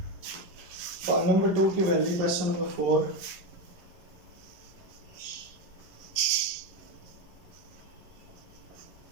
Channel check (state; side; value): late; left; 11 ms